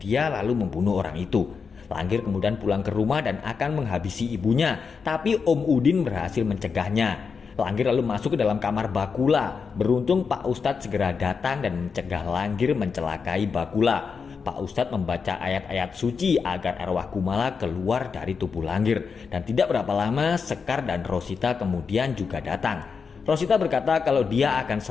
lalu membunuh orang itu. Langgir kemudian pulang ke rumah dan akan menghabisi ibunya, tapi Om Udin berhasil mencegahnya. Langgir lalu masuk ke dalam kamar Bakula. Beruntung Pak Ustadz segera datang dan mencegah Langgir mencelakai Bakula. Pak Ustadz membaca ayat-ayat suci agar arwah Kumala keluar dari tubuh Langgir. Dan tidak berapa lama Sekar dan Rosita kemudian juga datang. Rosita berkata kalau dia akan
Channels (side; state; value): right; quieter; 5.6 dB